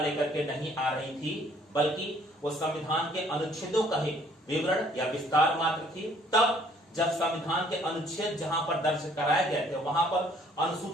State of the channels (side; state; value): both; normal; correlation 0.60